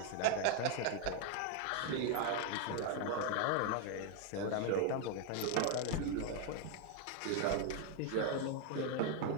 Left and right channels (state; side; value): different; both; correlation 0.01